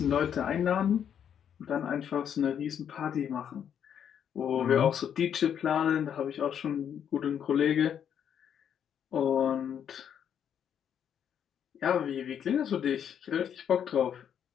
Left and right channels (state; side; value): quieter; right; 8.7 dB